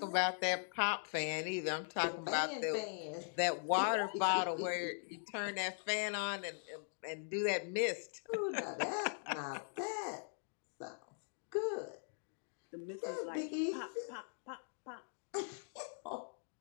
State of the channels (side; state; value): right; silent; digital silence